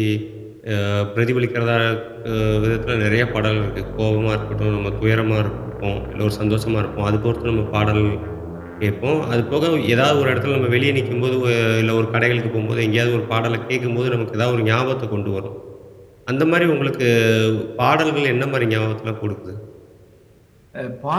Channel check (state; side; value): identical; both; correlation 1.00